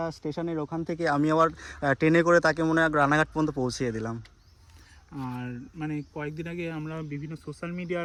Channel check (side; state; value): both; identical; correlation 1.00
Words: স্টেশনের ওখান থেকে আমি আবার ট্রেনে করে তাকে মনে হয় রানাঘাট পর্যন্ত পৌঁছিয়ে দিলাম। আর মানে কয়েকদিন আগে আমরা বিভিন্ন সোশ্যাল